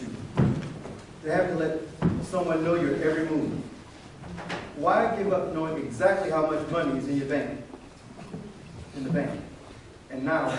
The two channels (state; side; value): identical; both; correlation 1.00